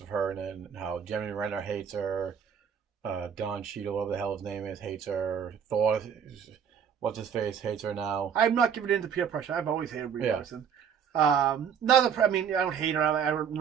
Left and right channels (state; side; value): quieter; left; 7.7 dB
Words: her and how Jeremy Renner hates her. Don Cheadle, whatever the hell his name is, hates her. Thor. What's his face hates her now. I'm not giving in to peer pressure. I've always hated Brie Larson. I don't hate her. I don't